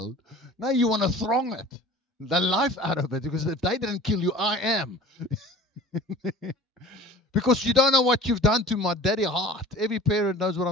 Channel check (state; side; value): normal; both; correlation 0.42